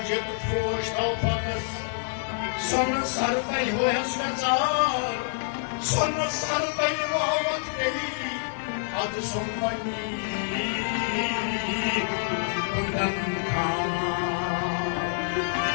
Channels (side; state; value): right; silent; digital silence